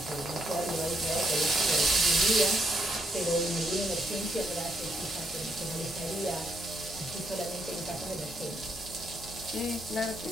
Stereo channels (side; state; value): both; normal; correlation 0.76